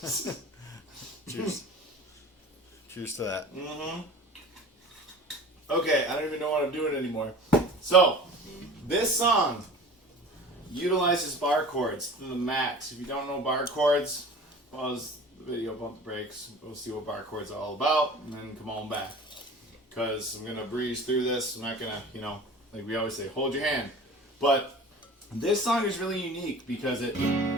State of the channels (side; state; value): both; normal; correlation 0.40